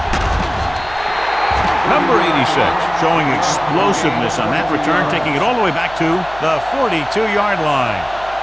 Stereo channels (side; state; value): right; noise; hum, 19 dB below the sound